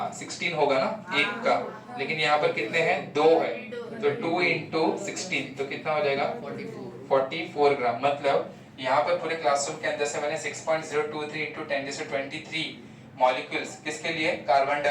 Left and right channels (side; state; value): both; identical; correlation 1.00